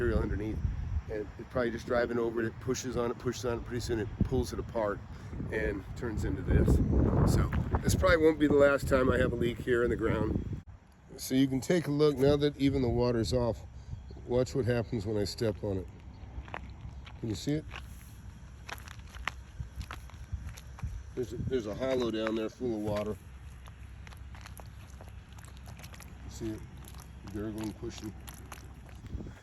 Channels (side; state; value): both; identical; correlation 1.00